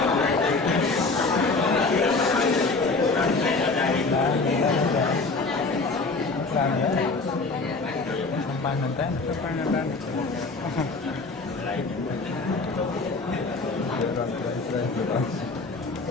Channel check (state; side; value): quieter; right; 3.8 dB